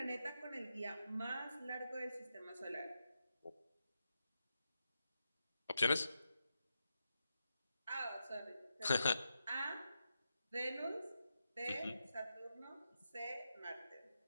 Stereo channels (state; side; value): inverted; both; correlation -0.87